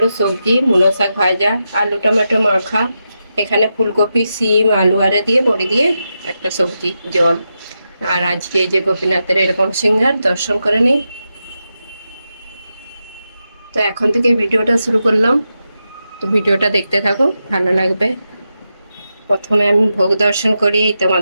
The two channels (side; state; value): both; inverted; correlation -0.88